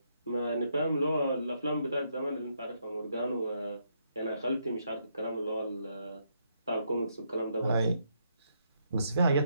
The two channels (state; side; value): inverted; both; correlation -0.75